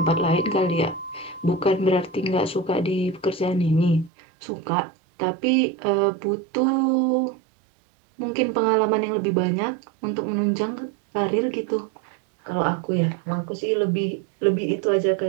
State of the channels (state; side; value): drops out; left; at 4.1 s